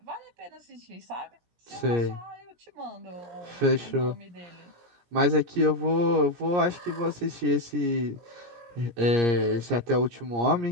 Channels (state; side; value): late; left; 17 ms